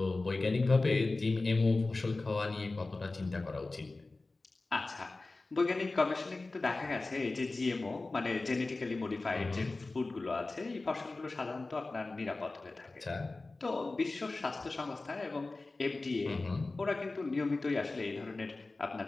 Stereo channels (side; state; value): right; quieter; 3.3 dB